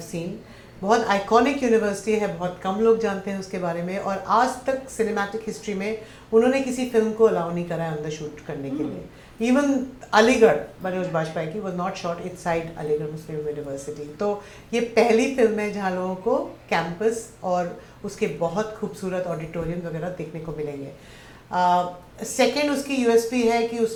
seen. बहुत आइकॉनिक यूनिवर्सिटी है, बहुत कम लोग जानते हैं उसके बारे में, और आज तक सिनेमैटिक हिस्ट्री में उन्होंने किसी फिल्म को अलाउ नहीं करा है अंदर शूट करने के लिए. इवन अलीगढ़ मनोज बाजपेयी की was not shot inside Aligarh Muslim university. तो ये पहली फिल्म है जहाँ लोगों को कैंपस और उसके बहुत खूबसूरत ऑडिटोरियम वगैरह देखने को मिलेंगे. सेकेंड उसकी यूएसपी है कि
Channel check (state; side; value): identical; both; correlation 1.00